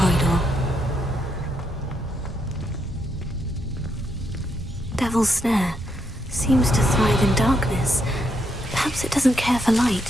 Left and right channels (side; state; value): both; normal; correlation 0.78